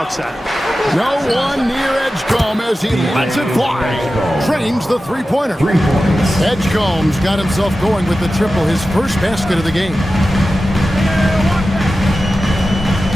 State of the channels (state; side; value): normal; both; correlation 0.94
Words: No one near Edgecombe as he lets it fly. Trains the three-pointer. Edgecombe's got himself going with the triple, his first basket of the game.